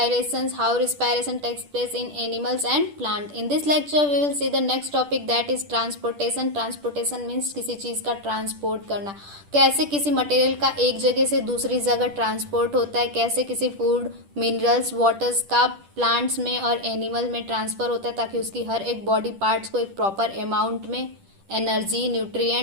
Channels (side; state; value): left; late; 10 ms